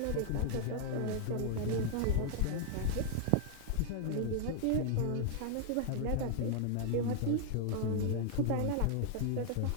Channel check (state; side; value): different; both; correlation -0.01